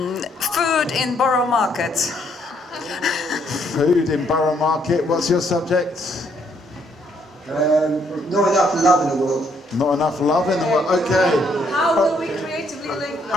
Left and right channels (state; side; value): normal; both; correlation 0.70